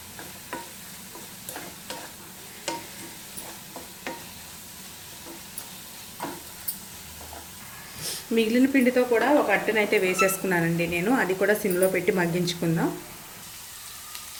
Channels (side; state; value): both; identical; correlation 1.00